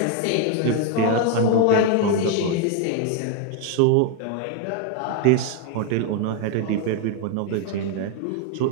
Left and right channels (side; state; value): both; different; correlation 0.01